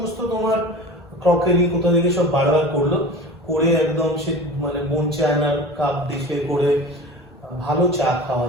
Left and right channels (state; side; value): normal; both; correlation 0.36